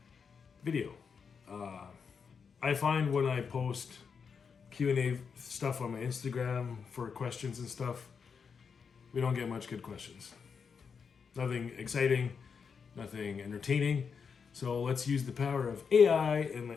video. I find when I post Q&A stuff on my Instagram for questions and stuff, we don't get much good questions. Nothing exciting, nothing entertaining. So let's use the power of AI in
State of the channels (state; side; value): quieter; right; 6.0 dB